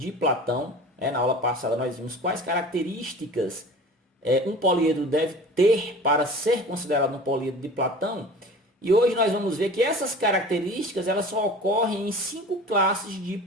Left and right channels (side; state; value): both; normal; correlation 0.40